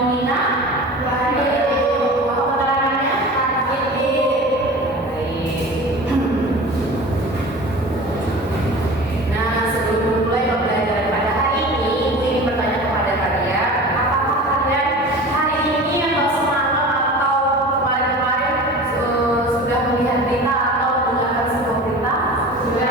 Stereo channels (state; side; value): normal; both; correlation 0.37